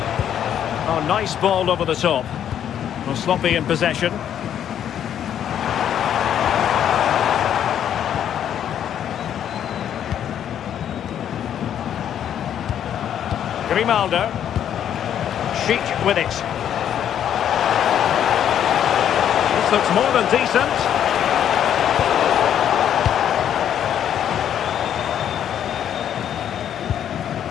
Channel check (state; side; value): quieter; right; 9.8 dB